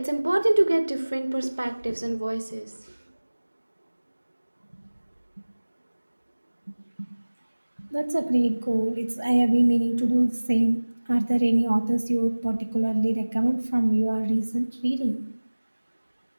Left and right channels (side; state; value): both; inverted; correlation -1.00